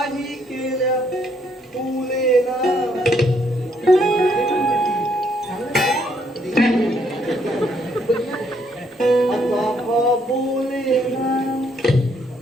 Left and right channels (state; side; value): normal; both; correlation 0.70